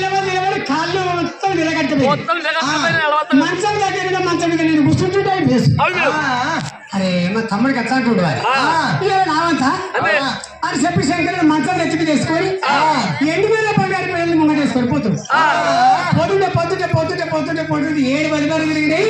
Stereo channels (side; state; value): both; identical; correlation 1.00